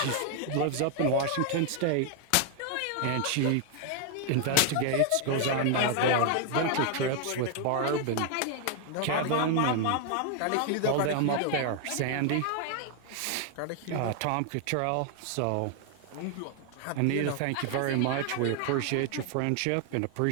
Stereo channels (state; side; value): different; both; correlation 0.00